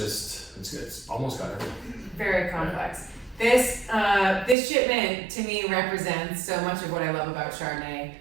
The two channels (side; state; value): left; drops out; at 4.5 s